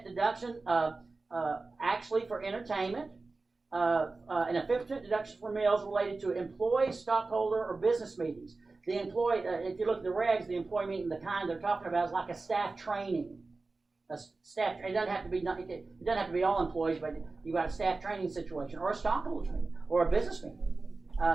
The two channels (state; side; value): quieter; left; 3.7 dB